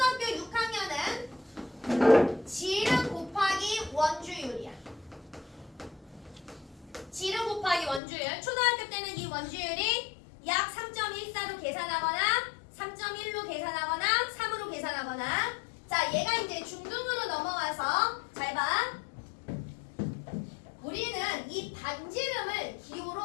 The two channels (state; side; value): drops out; right; at 8.0 s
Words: 6학년은 지름 곱하기 원주율이야. 지름 곱하기 원주율. 초등학교 때는 이 원주율이 약 3.14로 계산하거나 3.1로 계산하거나 3으로 계산하거나 자, 얘가 이제 중등으로 넘어와서 잘 봐. 우리는 이 반지름을